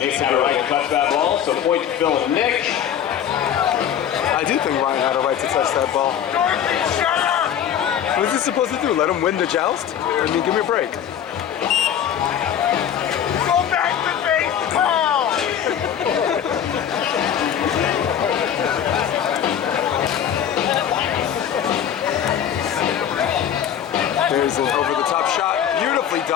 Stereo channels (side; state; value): right; quieter; 9.4 dB